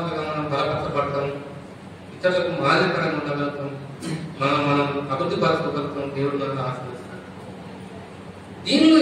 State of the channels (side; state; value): both; identical; correlation 1.00